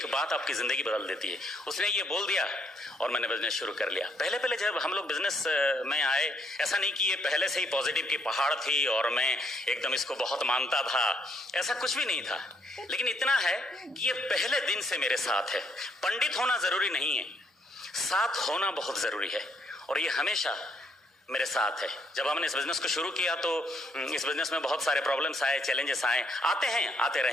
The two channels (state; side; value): normal; both; correlation 0.71